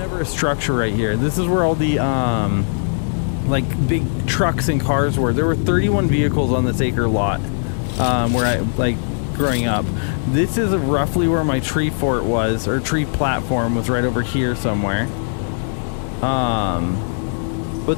a structure right here. This is where all the like big trucks and cars were. There were 31 vehicles on this acre lot where I like growing up. This is roughly where my tree fort was, or tree platform was, right over here somewhere. But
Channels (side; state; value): right; silent; digital silence